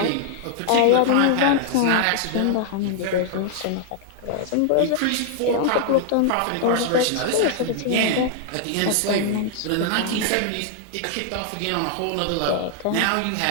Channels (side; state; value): both; different; correlation 0.00